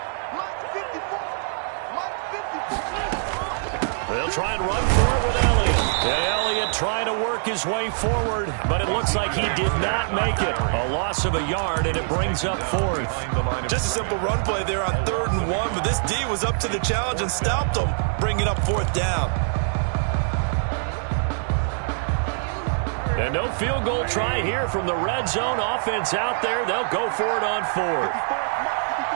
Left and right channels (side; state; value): left; silent; digital silence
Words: They'll try and run for it with Elliott. And Elliott trying to work his way forward, but it looks like he did not make it. A loss of a yard, and it brings up 4th. Just a simple run play there on 3rd and 1, but this D was up to the challenge and stopped them, bringing up 4th down. And no field goal try here from the red zone offense out there. They'll go for it on 4th.